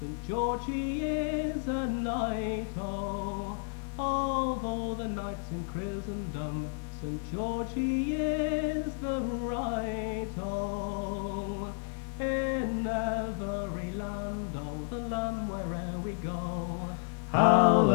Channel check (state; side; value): silent; right; digital silence